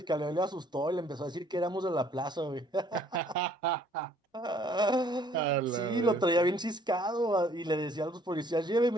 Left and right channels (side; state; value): both; normal; correlation 0.60